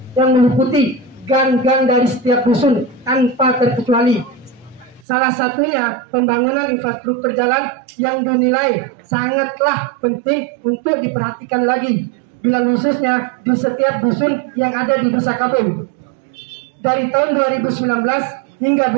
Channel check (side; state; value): left; drops out; at 5.0 s